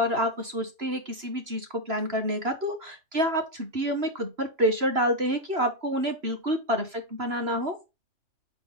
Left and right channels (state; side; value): late; left; 3.0 ms